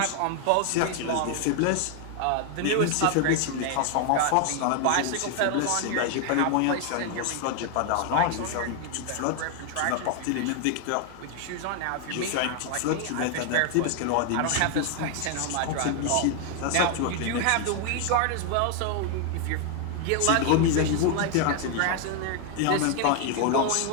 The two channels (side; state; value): both; different; correlation 0.00